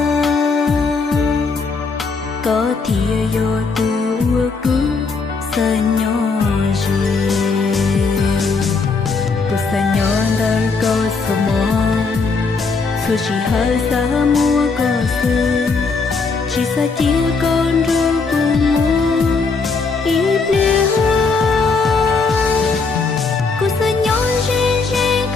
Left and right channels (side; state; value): right; quieter; 4.4 dB